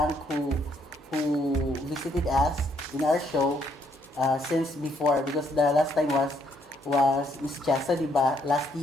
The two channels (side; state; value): both; normal; correlation 0.71